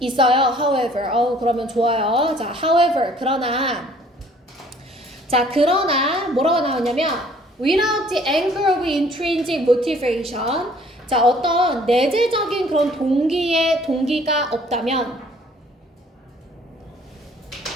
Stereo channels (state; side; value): normal; both; correlation 0.57